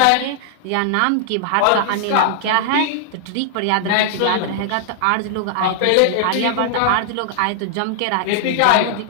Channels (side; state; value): both; different; correlation -0.01